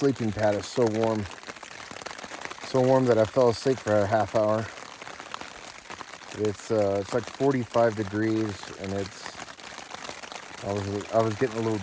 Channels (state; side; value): identical; both; correlation 1.00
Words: pad is so warm that I fell asleep for a half hour. It's like 45 degrees, and I was getting a little